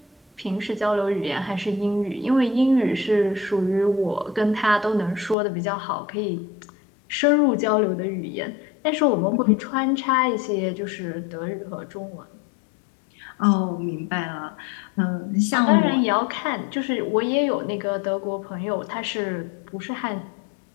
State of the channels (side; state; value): right; drops out; at 5.4 s